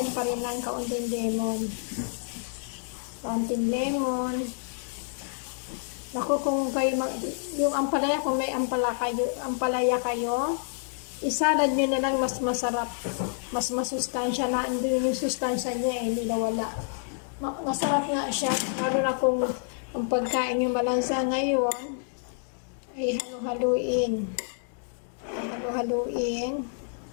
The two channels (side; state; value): right; silent; 59 dB below the other